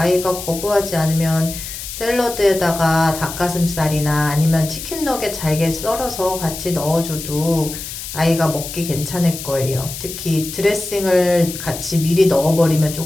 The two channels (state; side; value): noise; left; hiss, 9 dB below the sound